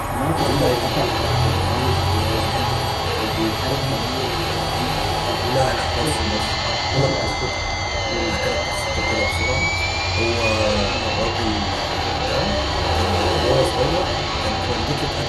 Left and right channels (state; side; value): identical; both; correlation 1.00